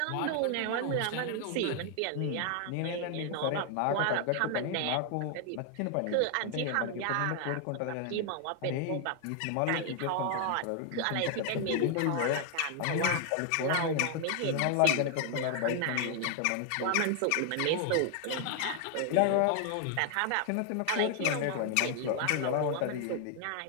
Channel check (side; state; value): both; different; correlation 0.00